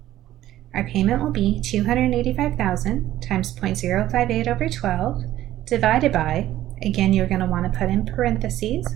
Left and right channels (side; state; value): left; quieter; 13.8 dB